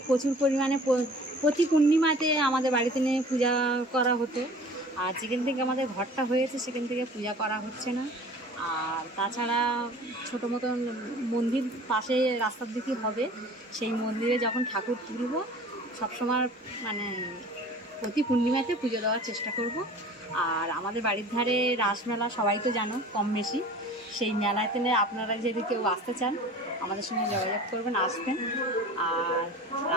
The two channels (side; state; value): both; normal; correlation 0.44